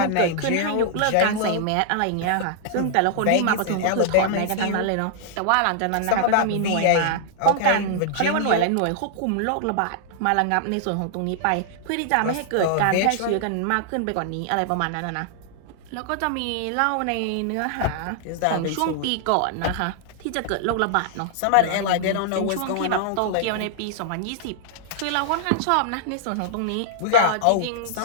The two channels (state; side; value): different; both; correlation -0.01